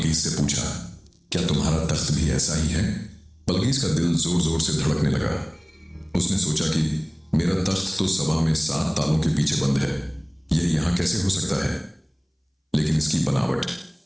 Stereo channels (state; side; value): identical; both; correlation 1.00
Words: से पूछा, क्या तुम्हारा तख्त भी ऐसा ही है? बल्कीस का दिल जोर जोर से धड़कने लगा। उसने सोचा कि मेरा तख्त तो सभा में 7 तालों के पीछे बंद है, यह यहां कैसे हो सकता है? लेकिन इसकी बनावट,